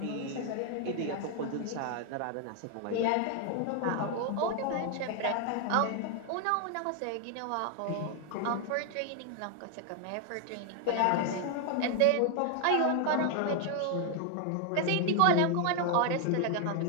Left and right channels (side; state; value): both; different; correlation 0.00